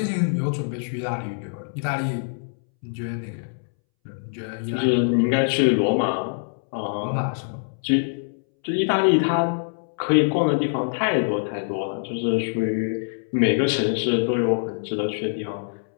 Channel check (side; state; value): right; silent; 63 dB below the other